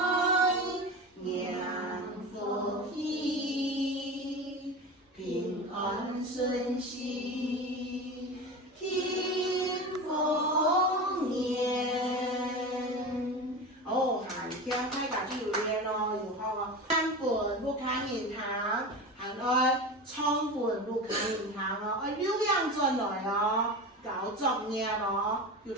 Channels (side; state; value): both; normal; correlation 0.27